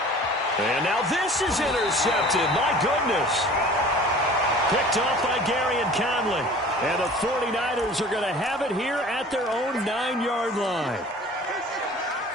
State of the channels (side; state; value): both; normal; correlation 0.45